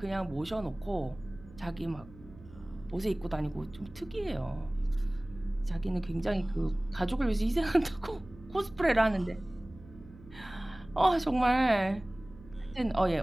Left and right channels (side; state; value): right; noise; hum, 20 dB below the sound